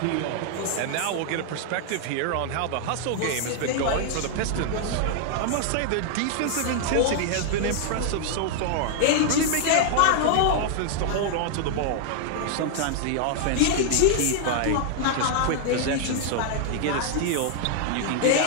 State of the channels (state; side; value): different; both; correlation 0.00